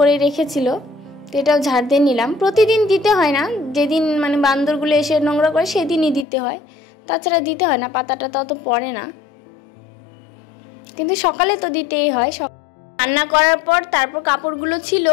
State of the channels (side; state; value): right; drops out; at 6.2 s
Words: রেখেছিল, তো এটাও ঝাড় দিয়ে নিলাম। প্রতিদিন দিতে হয় না, যেদিন মানে বান্দরগুলো এসে নোংরা করে সেদিনই দিতে হয়, তাছাড়া দিতে হয় না, পাতাটা তত পড়ে না, কিন্তু সকালে তো দিতেই হয়। রান্না করার পর তারপর কাপড়গুলো ছিল